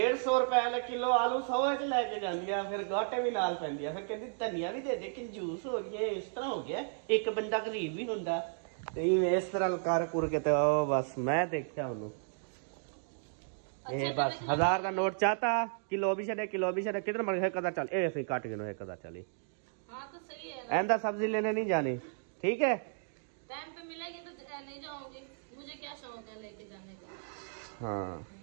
रुपए किलो आलू 100 च लेके जाती है, फिर गांठे भी नाल पैंदी है, फिर कहती धनिया भी दे दे, कंजूस हो गया, इस तरह हो गया, एक बंदा गरीब भी होंदा। इस तरह कर कुर के तो बस मैं देखा उन्होंने बस 1000 का नोट चाहता, किलो भी छे कितना मर है कदा चल ए काट के कदा चली। हाँ तो सही है, ऐंदा सब्जी लेने नहीं जानी, ठीक है टाइम पे मिलेगी तो नहीं जाऊंगी, मुझे क्या शौक है लेके जाने का। हाँ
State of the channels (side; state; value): left; silent; digital silence